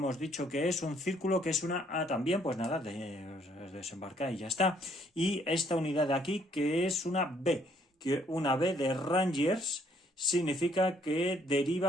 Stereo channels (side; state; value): both; normal; correlation 0.66